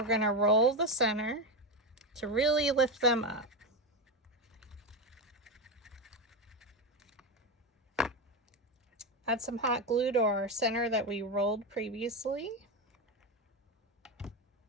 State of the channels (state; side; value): normal; both; correlation 0.14